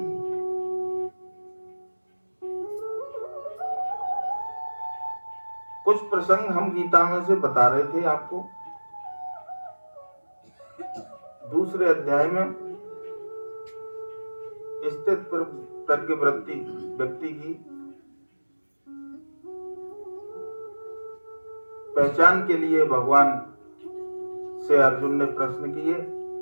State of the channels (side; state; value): both; inverted; correlation -1.00